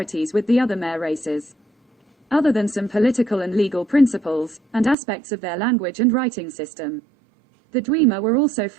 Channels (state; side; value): drops out; left; at 5.0 s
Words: with the other Mare races, other than some political and legal principles, and aspects of their language and writing system. The Dwemer were also